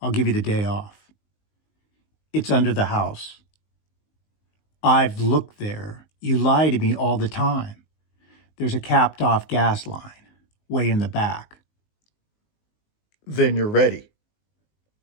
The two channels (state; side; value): late; right; 19 ms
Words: give you the day off. It's under the house. I've looked there. You lie to me all the time. There's a capped off gas line, way in the back. Then you're ready.